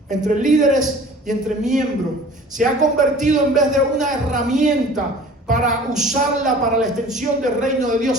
entre líderes y entre miembros. Se ha convertido, en vez de una herramienta para usarla para la extensión del reino de Dios,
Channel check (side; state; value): both; normal; correlation 0.46